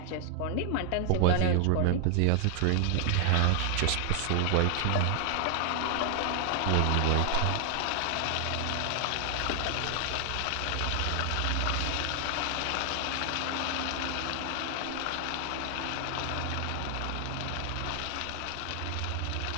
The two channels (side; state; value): both; different; correlation 0.00